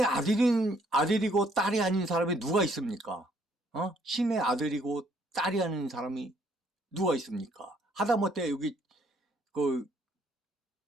아들이고 딸이 아닌 사람이 누가 있습니까? 신의 아들이고 딸이 아닌 사람이 누가 있습니까? 하다못해 여기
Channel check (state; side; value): normal; both; correlation 0.66